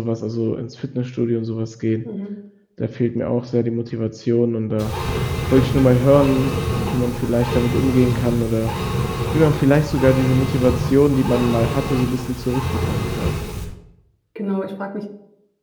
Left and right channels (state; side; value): identical; both; correlation 1.00